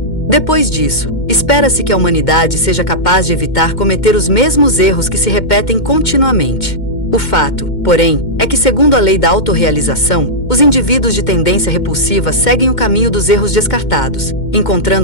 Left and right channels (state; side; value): late; right; 2.1 ms